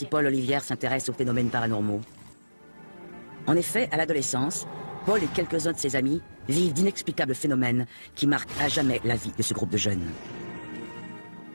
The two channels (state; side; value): inverted; both; correlation -1.00